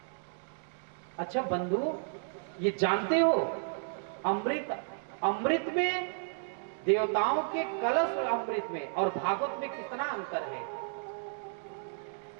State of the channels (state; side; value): silent; left; digital silence